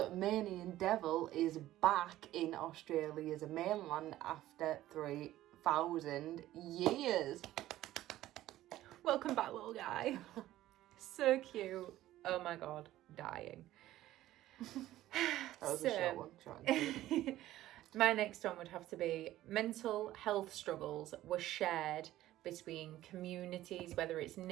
devil is back in Australia's mainland after 3,000 years. Welcome back, little guy. So cute. Oh my god, dying. That was a short one. Short and sweet. My next one would have to be mental health struggles were shared between communities, whether it's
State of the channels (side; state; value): left; quieter; 14.6 dB